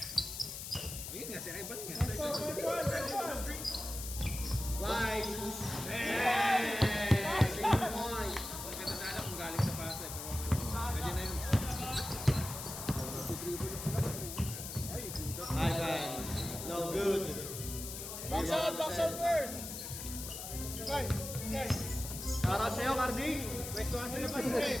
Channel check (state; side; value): noise; left; hiss, 7 dB below the sound